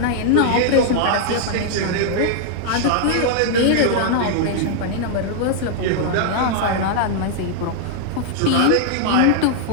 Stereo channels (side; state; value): both; different; correlation -0.01